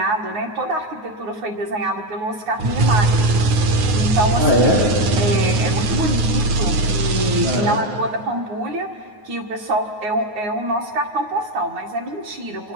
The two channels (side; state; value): left; late; 9.5 ms